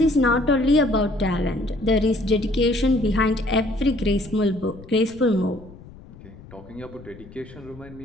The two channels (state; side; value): noise; left; rumble, 19 dB below the sound